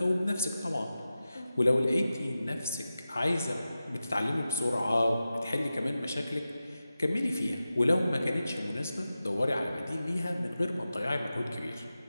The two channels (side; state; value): both; inverted; correlation -0.93